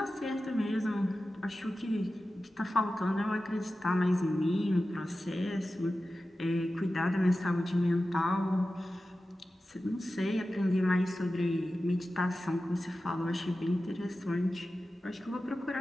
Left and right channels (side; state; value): both; normal; correlation 0.94